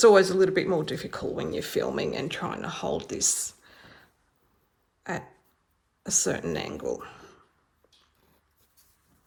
always a little bit more difficult when you're filming and trying to hold this at a certain angle.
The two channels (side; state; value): both; identical; correlation 1.00